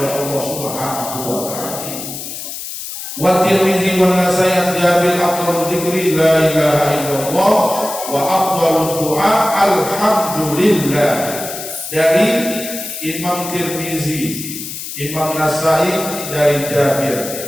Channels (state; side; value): noise; left; hiss, 8 dB below the sound